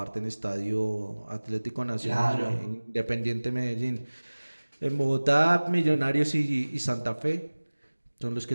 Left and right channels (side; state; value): both; inverted; correlation -1.00